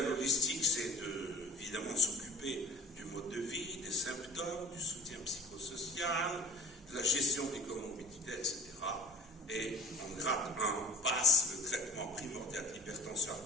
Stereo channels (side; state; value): both; normal; correlation 0.42